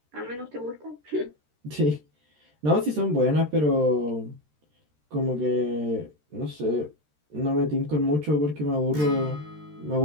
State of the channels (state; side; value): late; left; 13 ms